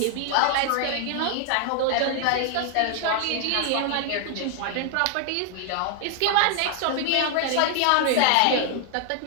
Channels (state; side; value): different; both; correlation 0.00